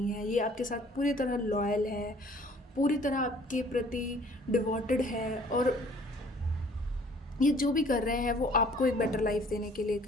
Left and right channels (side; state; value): both; normal; correlation 0.55